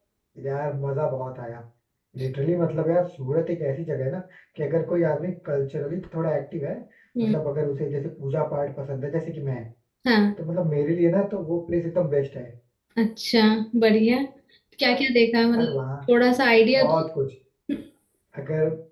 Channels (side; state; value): both; identical; correlation 1.00